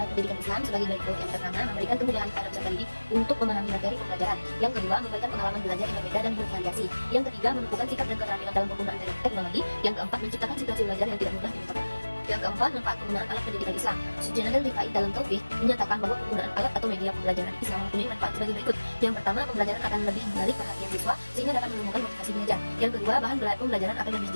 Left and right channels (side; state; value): both; inverted; correlation -1.00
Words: alat pendidikan Islam sebagai berikut. Yang pertama, memberikan kemudahan kepada peserta didik untuk memahami materi pembelajaran. Yang kedua, memberikan pengalaman belajar yang berbeda dan bervariasi. Yang ketiga, menumbuhkan sikap dan keterampilan dalam penggunaan teknologi. Yang keempat, menciptakan situasi belajar yang tidak mudah dilupakan. Yang keempat, manfaat penggunaan alat pendidikan Islam. Sujanan Rifai dalam Taufik menyatakan bahwa penggunaan alat atau media pembelajaran Islam mempunyai manfaat sebagai berikut. Yang pertama, pembelajaran akan lebih menarik perhatian siswa sehingga dapat menemukan motivasi belajar. Yang kedua, bahan pembelajaran akan lebih